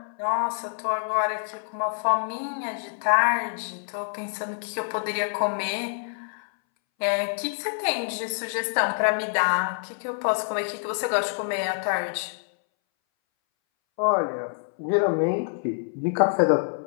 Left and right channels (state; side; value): silent; right; 61 dB below the other